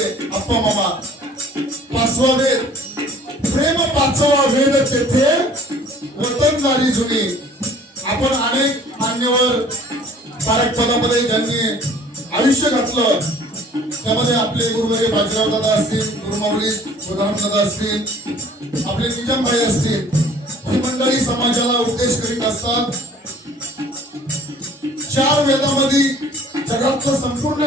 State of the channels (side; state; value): both; normal; correlation 0.52